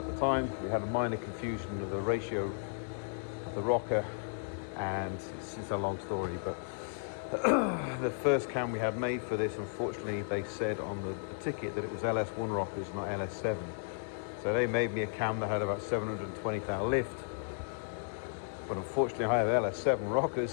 the time. We had a minor confusion of the ratio of the rocker, and it's a long story, but the first cam we had made for this, unfortunately they said on the ticket that it was LS1 rockers, not LS7. So they made me a cam that had about 720 thou lift, but unfortunately I have LS7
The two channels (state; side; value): silent; right; digital silence